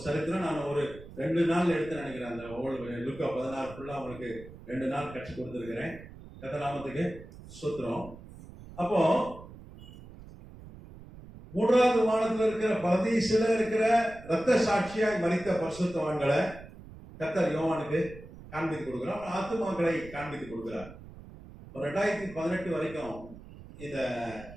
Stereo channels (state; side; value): noise; right; rumble, 17 dB below the sound